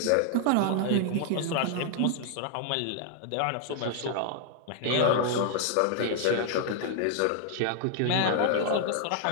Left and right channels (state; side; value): different; both; correlation -0.01